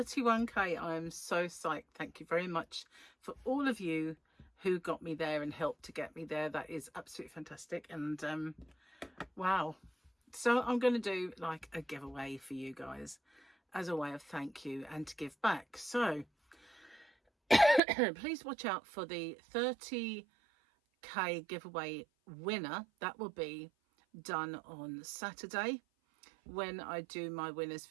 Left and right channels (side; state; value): left; drops out; at 17.8 s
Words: I am so psyched. Thank you very much for all of you who got me there and helped to get me there. That is absolutely fantastic. And wow, so I'm going to do like a giveaway for you guys as a way of thank you and to give back. So please watch out for the 30k giveaway winner. That will be done on Saturday when I do my winners